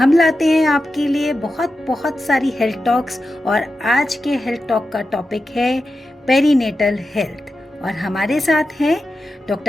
लाते हैं आपके लिए बहुत सारी हेल्थ टॉक्स। और आज के हेल्थ टॉक का टॉपिक है पेरीनेटल हेल्थ। और हमारे साथ हैं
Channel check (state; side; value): normal; both; correlation 0.91